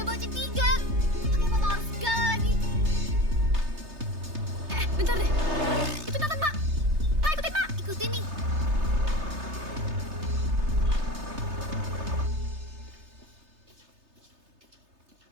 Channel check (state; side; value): late; left; 3.3 ms